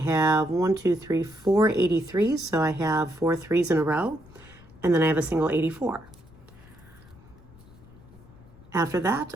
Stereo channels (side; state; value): left; noise; rumble, 23 dB below the sound